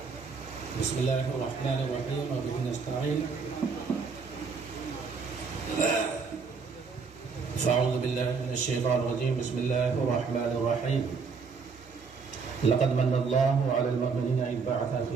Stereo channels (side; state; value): left; quieter; 5.2 dB